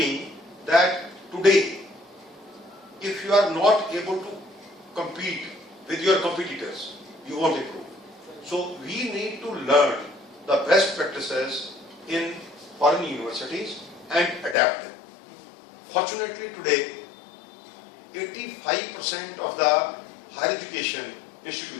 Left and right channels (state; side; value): drops out; right; at 14.6 s